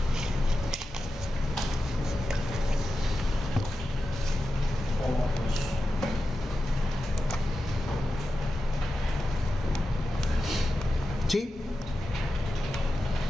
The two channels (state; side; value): normal; both; correlation 0.92